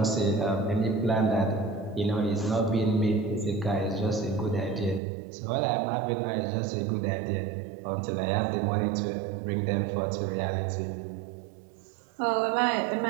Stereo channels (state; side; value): drops out; left; at 5.0 s